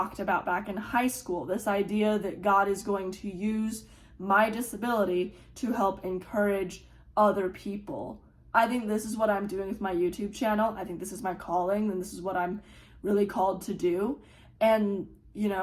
about back in high school. This idea that God is going to use my disability to help encourage other people. I think this is what I'm doing with my YouTube channel. I think this is my calling, and this is what I'm really called to do. And,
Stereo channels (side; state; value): both; identical; correlation 1.00